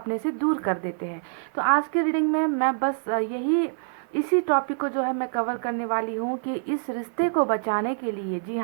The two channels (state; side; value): silent; left; 55 dB below the other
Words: से दूर कर देते हैं। तो आज के रीडिंग में मैं बस इसी टॉपिक को जो है मैं कवर करने वाली हूँ कि इस रिश्ते को बचाने के लिए, जी